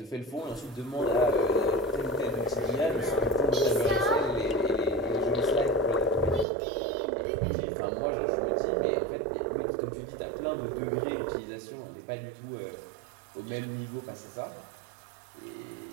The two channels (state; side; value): drops out; left; at 6.5 s